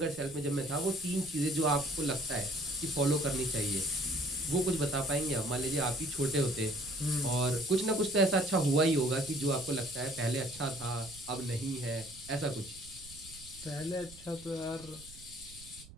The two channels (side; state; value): right; noise; rumble, 19 dB below the sound